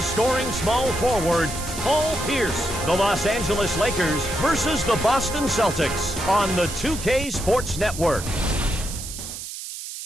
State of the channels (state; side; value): noise; right; hiss, 9 dB below the sound